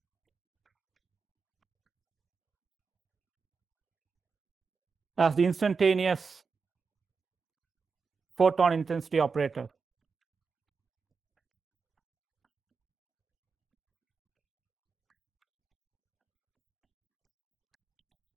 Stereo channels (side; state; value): left; quieter; 5.1 dB